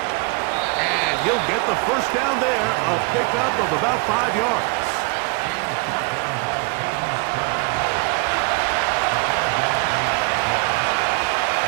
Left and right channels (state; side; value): quieter; left; 29.3 dB